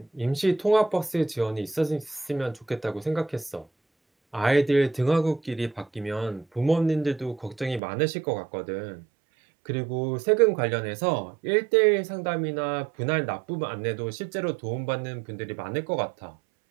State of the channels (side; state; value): left; drops out; at 7.8 s